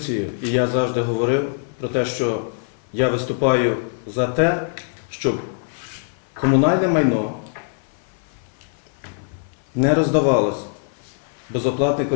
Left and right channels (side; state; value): right; silent; 56 dB below the other